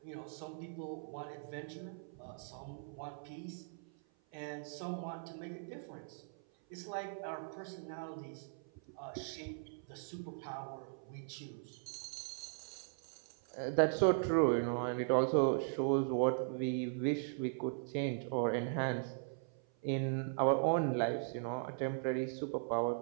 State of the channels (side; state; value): left; silent; 52 dB below the other